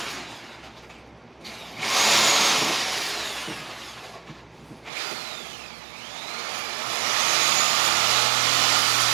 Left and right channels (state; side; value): drops out; left; at 4.9 s